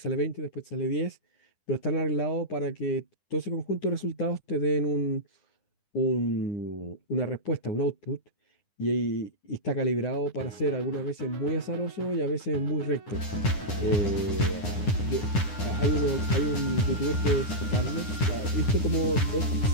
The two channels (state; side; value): late; right; 9.9 ms